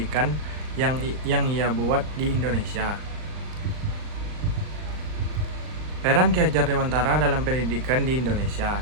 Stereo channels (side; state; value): left; late; 39 ms